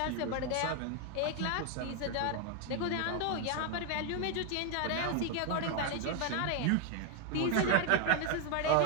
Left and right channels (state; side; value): different; both; correlation 0.01